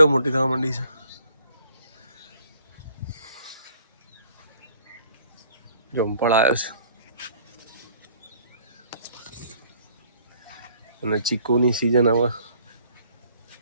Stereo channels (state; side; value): inverted; both; correlation -0.59